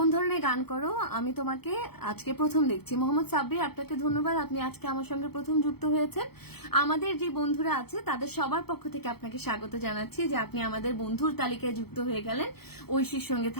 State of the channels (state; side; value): late; right; 0.96 ms